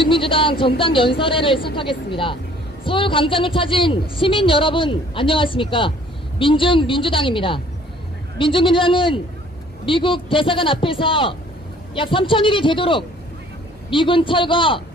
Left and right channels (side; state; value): both; normal; correlation 0.56